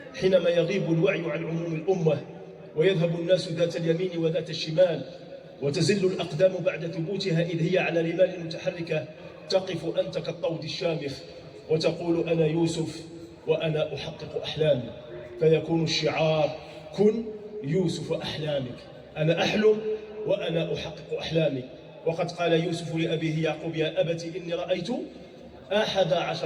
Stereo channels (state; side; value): identical; both; correlation 1.00